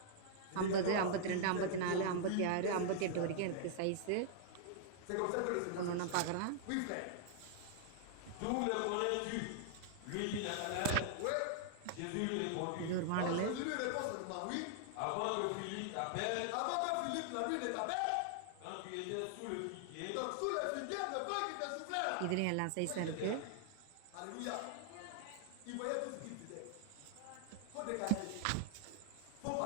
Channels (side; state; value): both; different; correlation -0.01